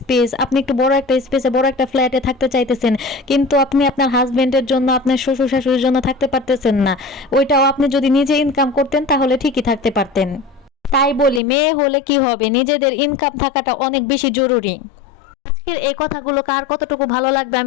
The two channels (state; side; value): drops out; right; at 11.4 s